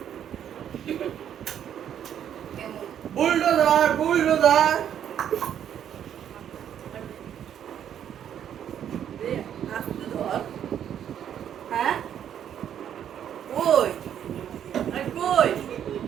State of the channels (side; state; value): left; quieter; 9.6 dB